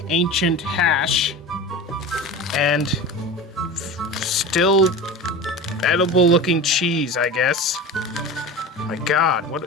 ancient hash, and still edible looking cheese, I guess. My God,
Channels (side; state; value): both; normal; correlation 0.31